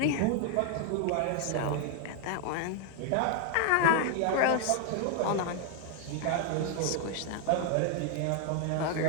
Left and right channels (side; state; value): both; different; correlation 0.00